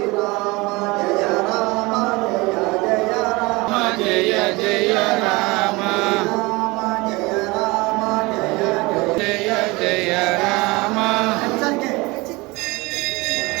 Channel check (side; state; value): left; quieter; 23.8 dB